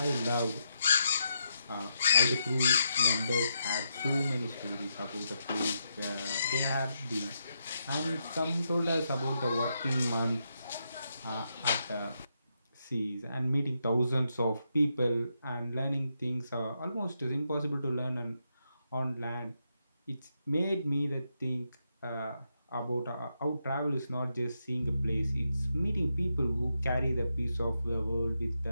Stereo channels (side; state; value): both; inverted; correlation -0.83